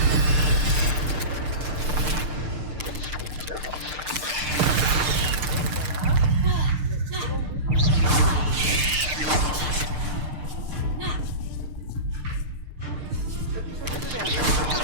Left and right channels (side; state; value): left; late; 6.6 ms